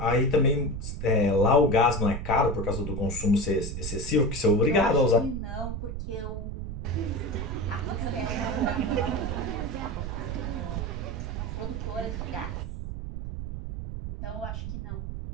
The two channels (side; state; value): right; noise; rumble, 5 dB below the sound